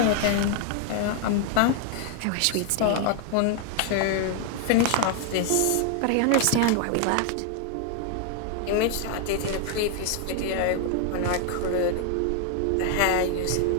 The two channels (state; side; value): different; both; correlation 0.00